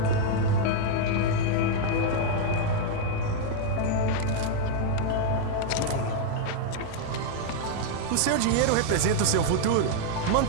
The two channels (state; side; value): different; both; correlation 0.00